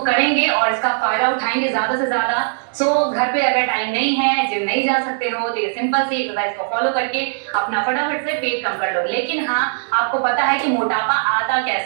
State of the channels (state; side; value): silent; left; digital silence